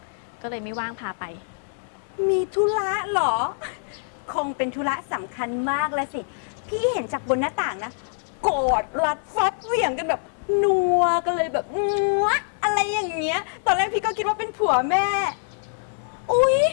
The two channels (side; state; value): right; silent; digital silence